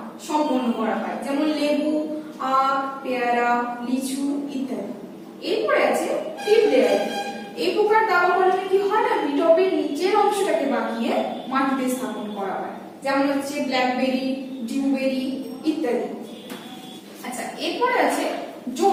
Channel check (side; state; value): both; identical; correlation 1.00